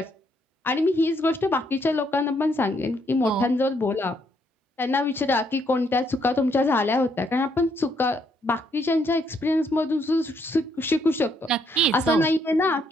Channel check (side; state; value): both; normal; correlation 0.72